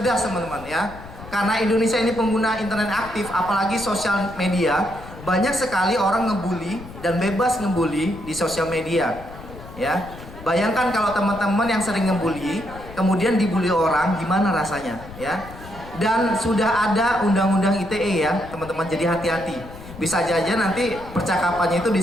teman-teman ya. Karena Indonesia ini pengguna internet aktif, apalagi sosial media, banyak sekali orang ngebully dan bebas ngebully di sosial media. Ya. Bayangkan kalau teman-teman yang sering ngebully, kemudian dibully orang, gimana rasanya, ya? Dan sudah ada undang-undang ITE ya, teman-teman. Jadi hati-hati. Bisa aja nanti percakapannya itu di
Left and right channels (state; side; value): noise; left; rumble, 15 dB below the sound